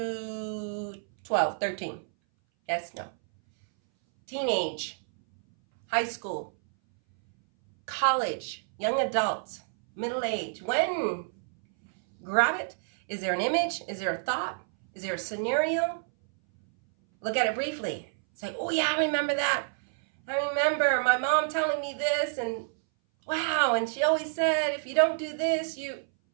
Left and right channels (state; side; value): silent; left; 59 dB below the other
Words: 12, 13? Yes? No. Teenage, high school, college, young adult, middle age. When? Grab it. Is there an image? Is there a thought? Is there a scenario? Look at it briefly. It's like, oh yeah, I remember that. I remember my mom telling me this, and wow, and she always said, if you don't do this, you...